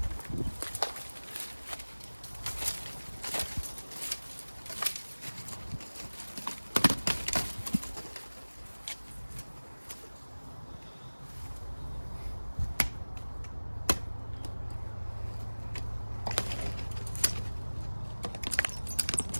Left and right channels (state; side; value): inverted; both; correlation -1.00